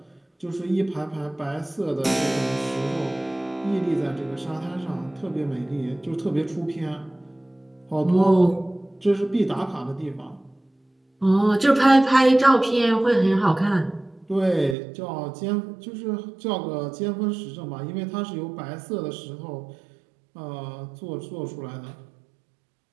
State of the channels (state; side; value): drops out; left; at 14.8 s